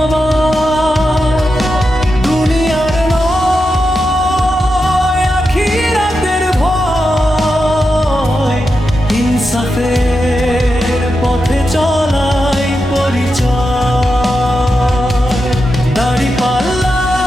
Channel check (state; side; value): normal; both; correlation 0.88